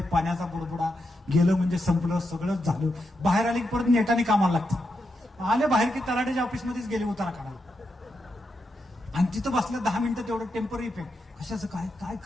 पाण्याचा बुडबुडा, गेलं म्हणजे संपलं, सगळंच झालं. बाहेर आले की परत नेटाने कामाला लागतं. आले बाहेर की तलाठ्याच्या ऑफिसमध्येच गेले उतारा काढायला. आणि तिथं बसलं 10 मिनिटं, तेवढं टेम्पररी इफेक्ट. कशाचं काय काय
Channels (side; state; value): both; normal; correlation 0.85